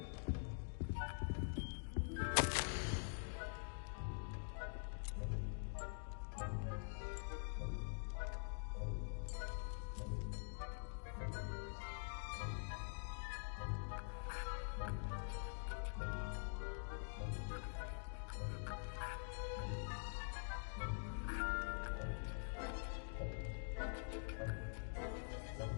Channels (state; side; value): silent; right; digital silence